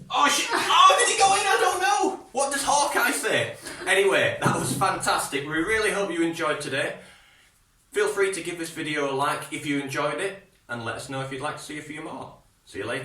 Oh, did it go in? I don't know. What does Hawkeye say? Anyway, that was fantastic. We really hope you enjoyed today. Feel free to give this video a like if you enjoyed it, and let us know if you'd like to see a few more. See you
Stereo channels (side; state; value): both; identical; correlation 1.00